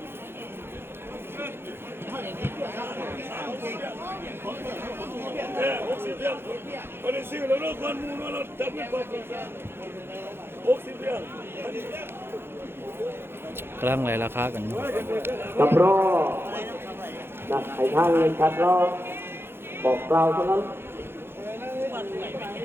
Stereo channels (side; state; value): left; late; 0.11 ms